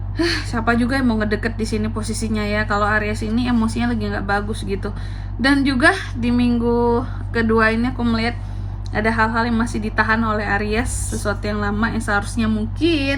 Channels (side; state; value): both; identical; correlation 1.00